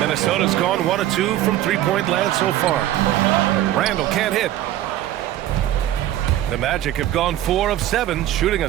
gone 1 of 2 from three-point land so far. Randle can't hit. The Magic have gone 4 of 7, shooting a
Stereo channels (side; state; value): left; quieter; 13.2 dB